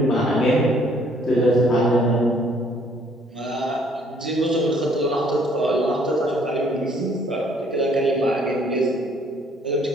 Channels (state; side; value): normal; both; correlation 0.62